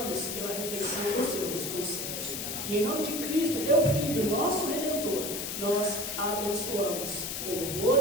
pela refeição que o Senhor nos concede. E em nome de Cristo, teu Filho, nosso Redentor, nós a abençoamos com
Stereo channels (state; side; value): noise; left; hiss, 4 dB below the sound